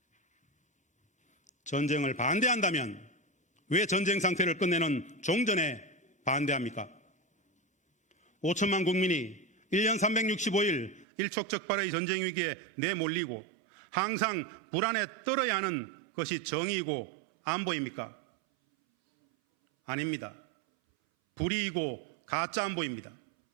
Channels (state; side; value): drops out; left; at 11.1 s